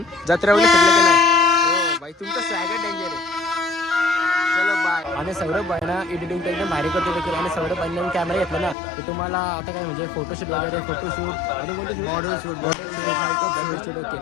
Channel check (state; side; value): drops out; right; at 8.8 s